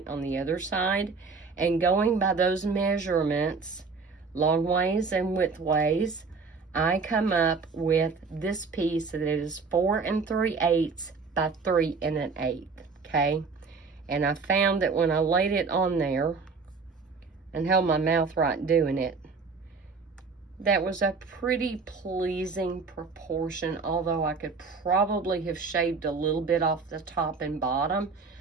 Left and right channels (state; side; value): quieter; left; 4.7 dB